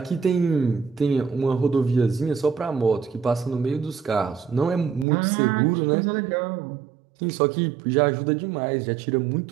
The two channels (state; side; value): drops out; left; at 5.1 s